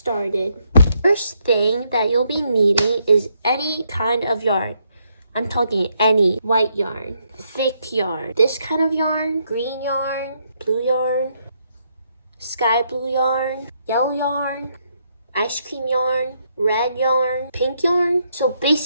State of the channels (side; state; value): both; inverted; correlation -0.75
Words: First thing that you'll be needing is any kind of yarn. I'm talking any white yarn, thick yarn, this kind of yarn, green yarn, blue yarn, sky blue yarn, yellow yarn, ice cream yarn, red yarn, pink yarn. So